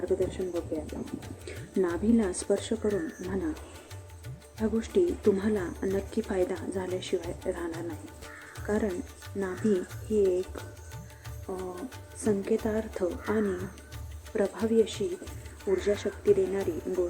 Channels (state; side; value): identical; both; correlation 1.00